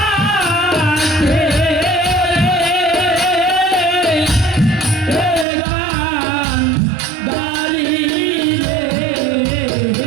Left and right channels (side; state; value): left; drops out; at 5.5 s